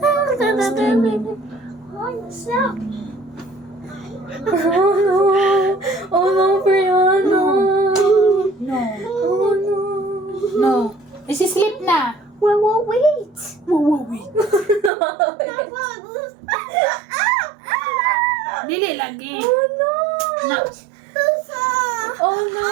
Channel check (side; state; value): left; drops out; at 14.9 s